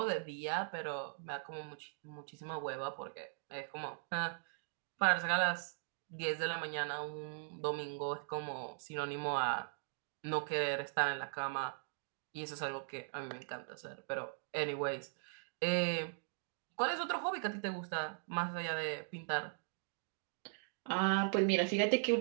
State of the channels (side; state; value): left; silent; digital silence